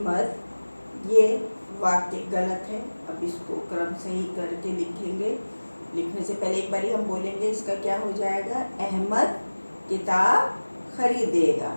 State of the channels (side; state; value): both; inverted; correlation -1.00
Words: ये वाक्य गलत है। अब इसको क्रम सही करके लिखेंगे। लिखने से पहले एक बार हम बोलेंगे इसका क्या हो जाएगा। अहमद किताब खरीदेगा।